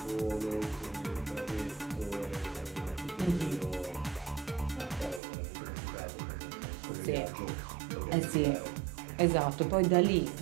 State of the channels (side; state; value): left; drops out; at 5.2 s